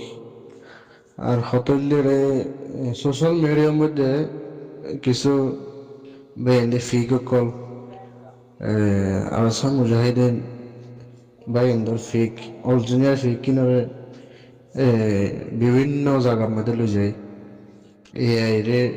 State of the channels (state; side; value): identical; both; correlation 1.00